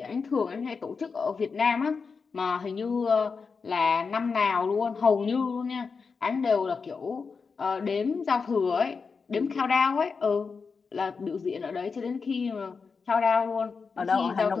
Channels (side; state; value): right; quieter; 5.1 dB